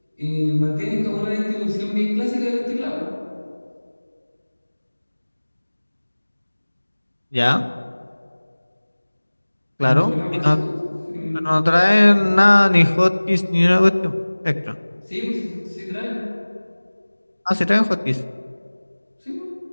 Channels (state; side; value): inverted; both; correlation -1.00